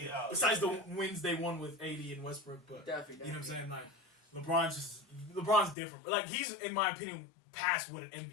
Besides the wins they won with AD and Westbrook, but Definitely. you know what I'm saying? Like LeBron's different. But like he's in my opinion past what an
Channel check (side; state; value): right; drops out; at 5.8 s